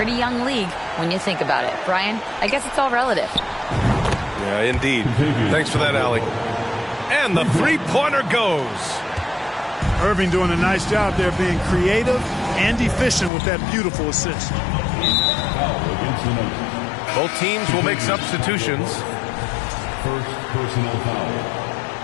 young league when you think about it. Brian, I guess it's all relative. Yeah, indeed. Thanks for that, Allie. And the three-pointer goes. Irving doing a nice job there being creative and efficient with that beautiful assist. Both teams will make substitutions. First personal foul.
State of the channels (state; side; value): drops out; right; at 13.3 s